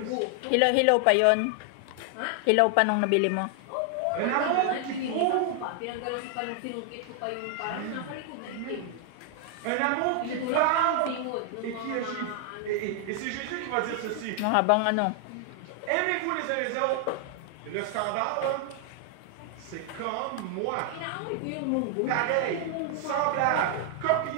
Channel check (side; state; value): both; different; correlation 0.00